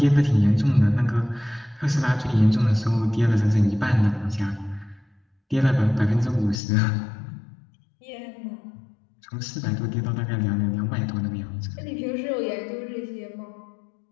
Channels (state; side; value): drops out; right; at 6.6 s